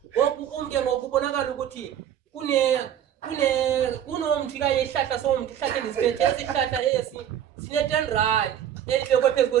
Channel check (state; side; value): quieter; left; 10.1 dB